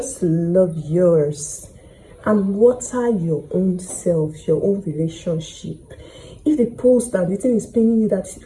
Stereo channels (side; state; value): both; identical; correlation 1.00